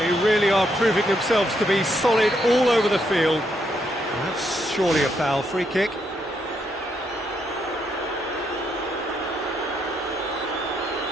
really are proving themselves to be solid all over the field. That's surely a foul. Free kick.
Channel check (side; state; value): both; normal; correlation 0.77